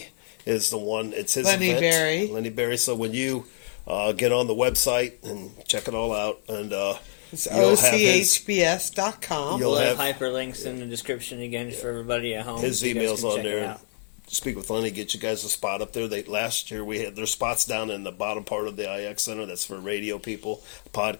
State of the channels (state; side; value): silent; right; 61 dB below the other